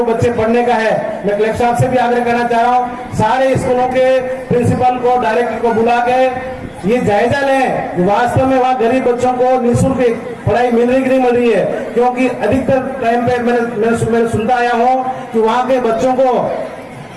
बच्चे पढ़ने का है, मैं कलेक्टर साहब से भी आग्रह करना चाह रहा हूँ, सारे स्कूलों के प्रिंसिपल को, डायरेक्टर को बुला के ये जायजा लें कि वास्तव में वहाँ गरीब बच्चों को निःशुल्क पढ़ाई मिल रही कि नहीं मिल रही है। क्योंकि अधिकतर टाइम पे मैंने सुनता आया हूँ कि वहाँ के बच्चों को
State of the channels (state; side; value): identical; both; correlation 1.00